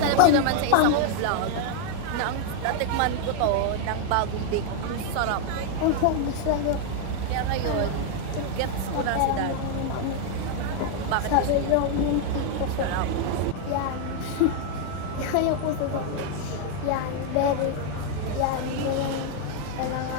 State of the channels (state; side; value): different; both; correlation 0.00